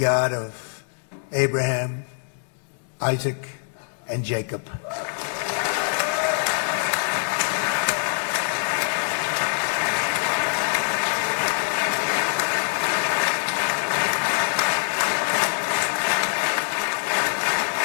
of Abraham, Isaac, and Jacob.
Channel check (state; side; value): silent; right; 62 dB below the other